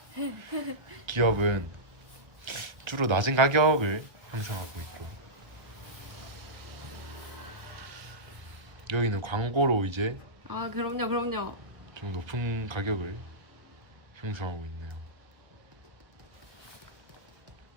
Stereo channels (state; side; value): late; left; 1.5 ms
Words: 기업은 주로 낮은 가격을 형성하고 있고, 여기는 광고로 이제 아, 그럼요. 좀 높은 가격을 형성하고 있네요.